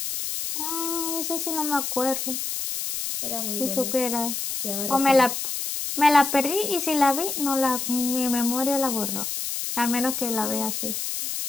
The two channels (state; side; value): noise; left; hiss, 3 dB below the sound